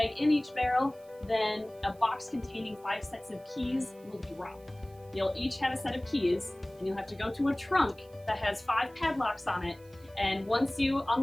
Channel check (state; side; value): noise; right; hiss, 28 dB below the sound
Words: in each barrel, then a box containing 5 sets of keys will drop. You'll each have a set of keys, and you'll have to go to a trunk that has 5 padlocks on it. And once you